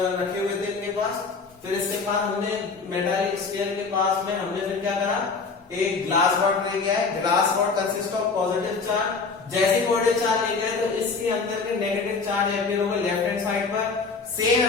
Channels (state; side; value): quieter; right; 4.5 dB